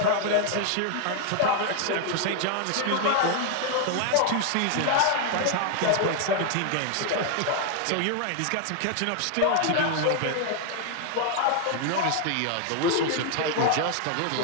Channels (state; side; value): different; both; correlation 0.00